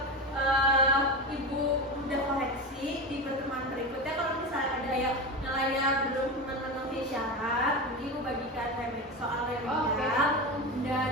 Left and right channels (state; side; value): normal; both; correlation 0.21